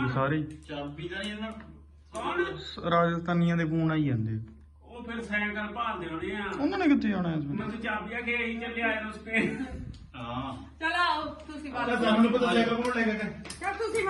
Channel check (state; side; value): identical; both; correlation 1.00